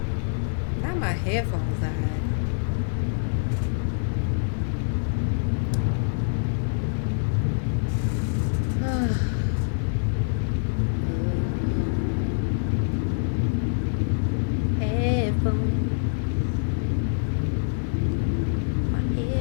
Now my headphones died. Headphones. My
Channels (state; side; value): silent; right; digital silence